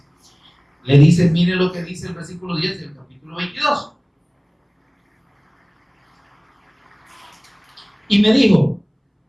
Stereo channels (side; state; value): both; identical; correlation 1.00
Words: Le dice, mire lo que dice el versículo 10 del capítulo 22. Y me dijo,